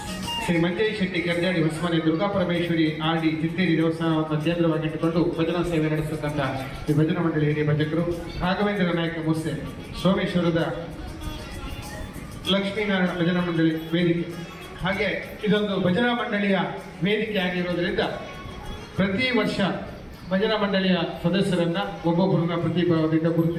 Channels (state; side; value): identical; both; correlation 1.00